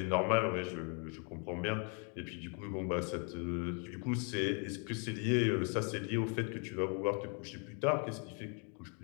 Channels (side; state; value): right; quieter; 38.6 dB